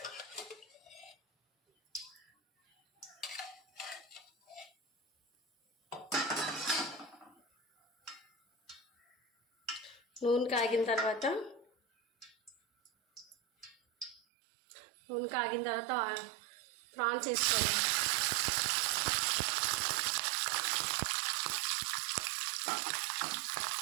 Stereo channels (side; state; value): left; drops out; at 14.2 s